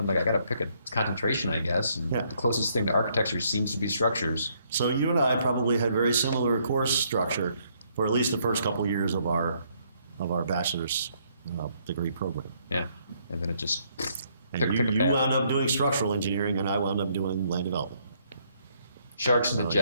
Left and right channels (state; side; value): inverted; both; correlation -0.69